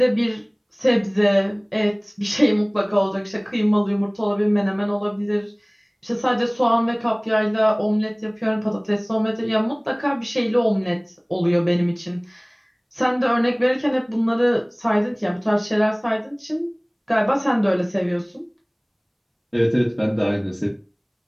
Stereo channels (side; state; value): both; identical; correlation 1.00